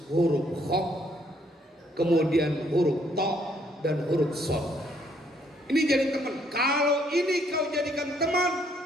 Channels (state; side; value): normal; both; correlation 0.68